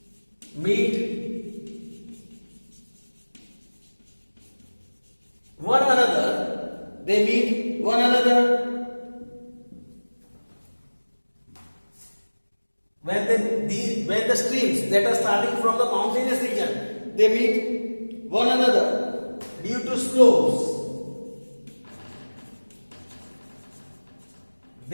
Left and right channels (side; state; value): both; inverted; correlation -1.00